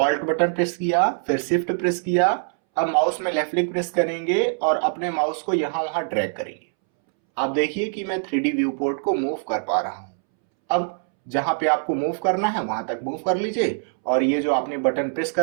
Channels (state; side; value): silent; left; 63 dB below the other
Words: बटन प्रेस किया, फिर शिफ्ट प्रेस किया, अब माउस में लेफ्ट क्लिक प्रेस करेंगे और अपने माउस को यहां वहां ड्रैग करेंगे। आप देखिए कि मैं 3D व्यू पोर्ट को मूव कर पा रहा हूं। अब जहां पे आपको मूव करना है वहां तक मूव कर लीजिए और ये जो आपने बटन प्रेस